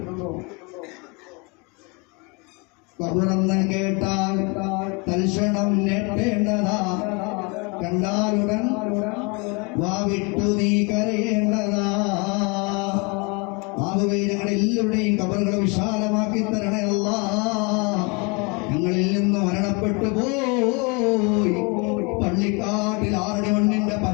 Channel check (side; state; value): right; quieter; 30.9 dB